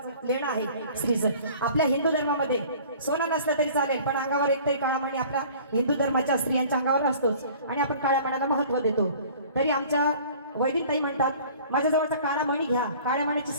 लेणं आहे स्त्रीचं आपल्या हिंदू धर्मामध्ये सोनं नसलं तरी चालेल पण अंगावर एकतरी काळा मणी आपल्या हिंदू धर्माच्या स्त्रियांच्या अंगावर असतोच आणि आपण काळ्या मण्याला महत्व देतो तरी आमच्या वैदिक ताई म्हणतात माझ्या जवळचा काळा मणी घ्या काळ्या मण्याची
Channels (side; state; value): both; inverted; correlation -0.48